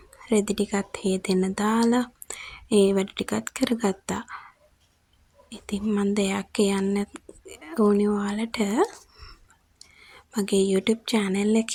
රෙදි ටිකත් හේදෙන්න දාලා ඒ වැඩ ටිකත් කරගත්තා. ඉතින් මම දෙයක් කියන්න ඕනේ ඔයාලට. මගේ YouTube channel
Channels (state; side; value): identical; both; correlation 1.00